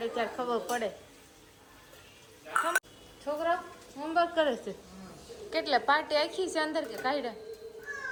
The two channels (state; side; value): identical; both; correlation 1.00